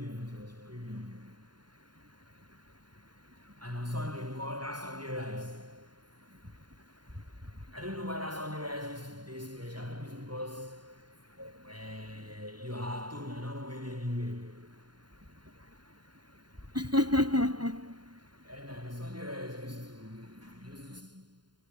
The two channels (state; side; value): late; left; 0.71 ms